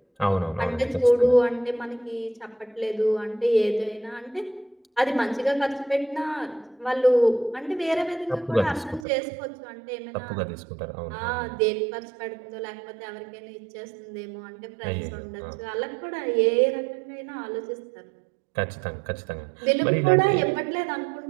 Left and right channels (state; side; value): drops out; left; at 9.1 s